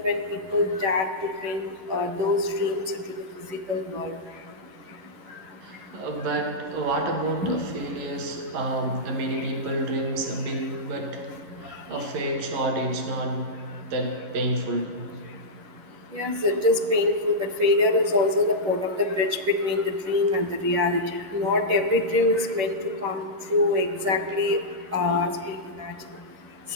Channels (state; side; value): late; left; 11 ms